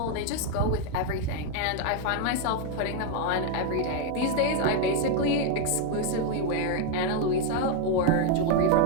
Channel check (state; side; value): different; both; correlation 0.01